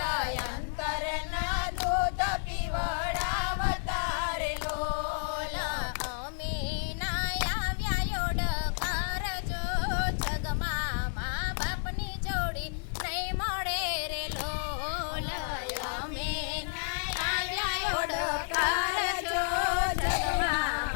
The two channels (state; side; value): silent; right; digital silence